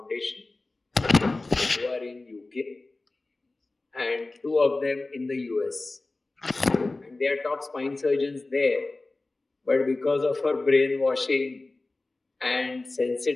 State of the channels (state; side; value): quieter; right; 3.2 dB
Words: who are in UK and 2 of them in the US. And they are top spine surgeons there, but because of our brainwashing and